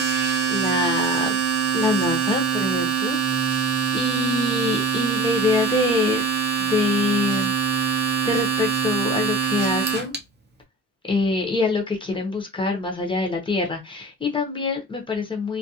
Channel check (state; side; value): normal; both; correlation 0.38